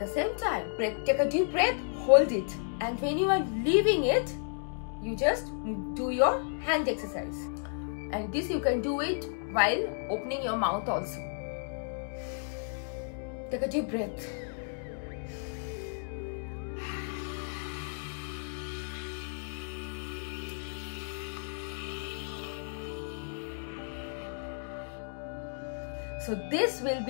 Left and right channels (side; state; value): right; silent; digital silence